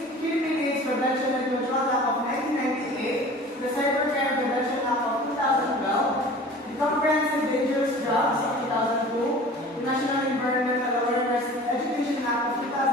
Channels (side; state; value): both; normal; correlation 0.42